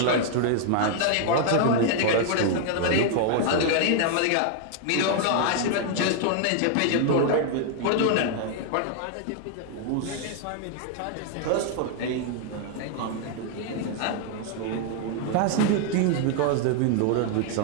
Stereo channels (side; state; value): both; different; correlation 0.00